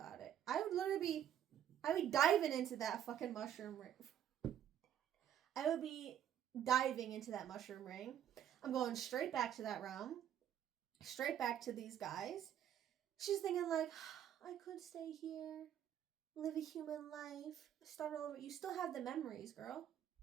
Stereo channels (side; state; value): left; quieter; 10.3 dB